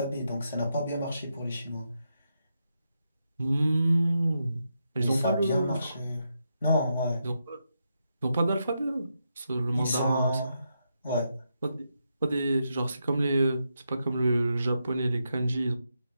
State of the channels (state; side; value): inverted; both; correlation -0.83